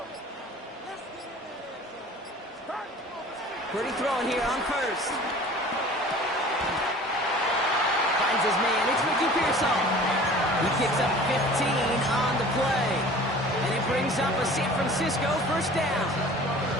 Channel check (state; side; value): normal; both; correlation 0.45